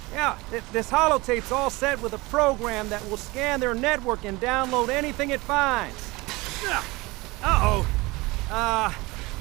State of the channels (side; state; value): left; quieter; 22.8 dB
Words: Yeah, this holotape's all set with a program that will scan their network and download anything it finds. Uh-oh.